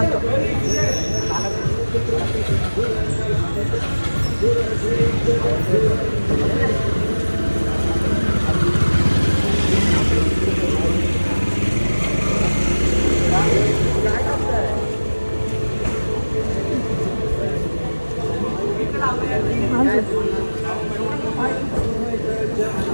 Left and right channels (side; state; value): both; inverted; correlation -1.00